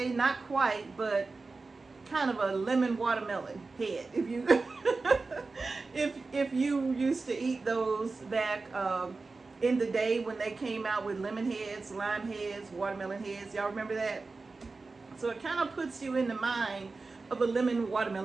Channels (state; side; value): quieter; left; 3.9 dB